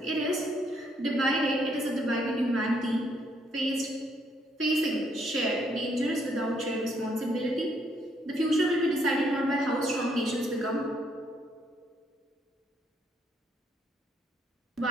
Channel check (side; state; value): both; normal; correlation 0.71